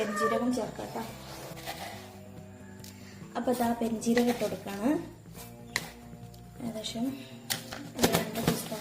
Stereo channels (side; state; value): both; identical; correlation 1.00